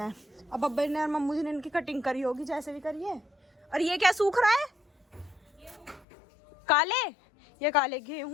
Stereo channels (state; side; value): drops out; right; at 6.1 s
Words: हैं। अब अब्बा ने और मम्मू जी ने इनकी कटिंग करी होगी, जैसे भी करी है। और ये क्या सूख रहा है? काले, ये काले